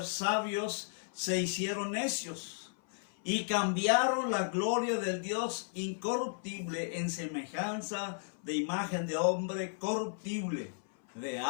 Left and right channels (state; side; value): silent; right; 55 dB below the other